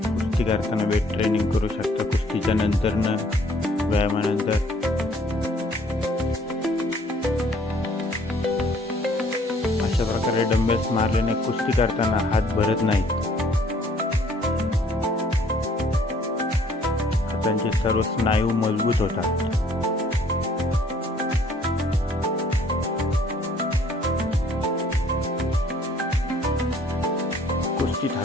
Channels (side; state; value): both; normal; correlation 0.60